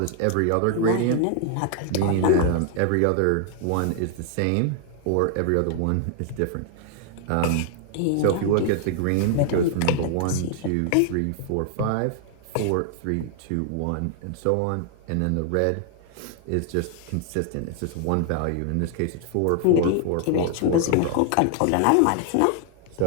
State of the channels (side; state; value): both; different; correlation 0.00